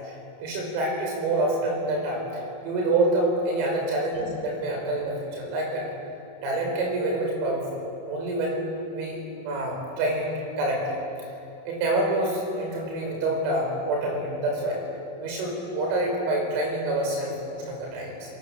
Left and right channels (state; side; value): late; left; 27 ms